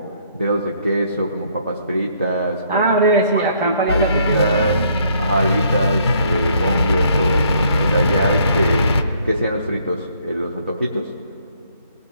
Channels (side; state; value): both; inverted; correlation -0.66